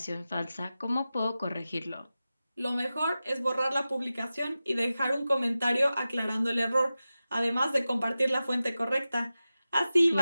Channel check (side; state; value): both; inverted; correlation -0.94